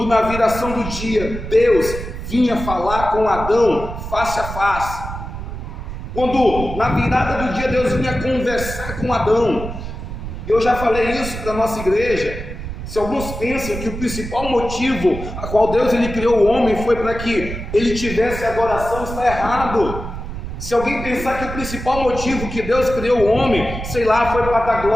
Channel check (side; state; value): right; noise; rumble, 8 dB below the sound